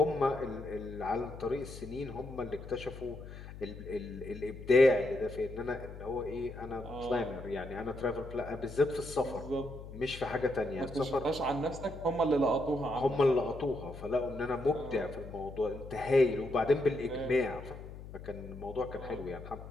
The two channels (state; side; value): noise; left; hum, 13 dB below the sound